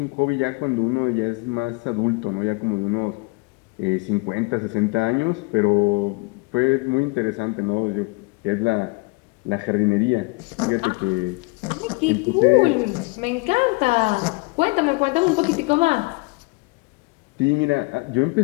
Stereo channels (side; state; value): right; quieter; 27.1 dB